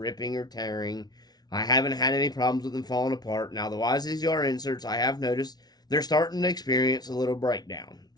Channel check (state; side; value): late; right; 0.19 ms